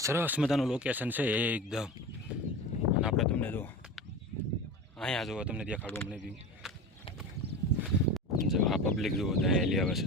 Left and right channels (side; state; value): both; normal; correlation 0.29